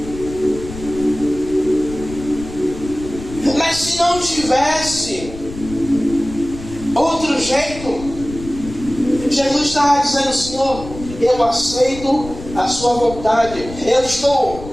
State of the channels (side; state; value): left; noise; rumble, 13 dB below the sound